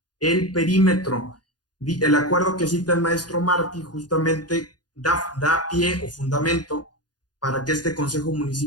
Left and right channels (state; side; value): late; right; 0.69 ms